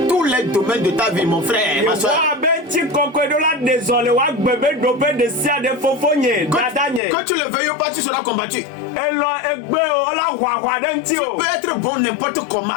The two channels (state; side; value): drops out; right; at 7.0 s